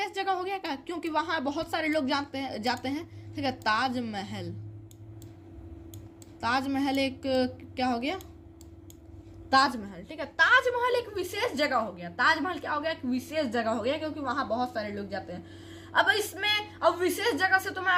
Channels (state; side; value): identical; both; correlation 1.00